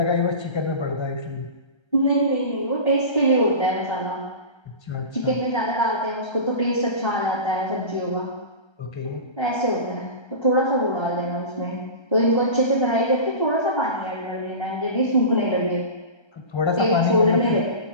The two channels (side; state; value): right; late; 1.3 ms